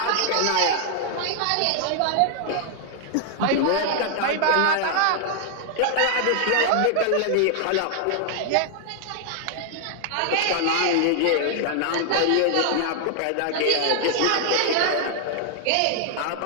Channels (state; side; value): different; both; correlation 0.00